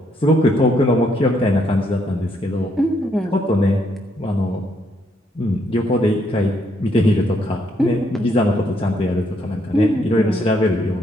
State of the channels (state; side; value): normal; both; correlation 0.73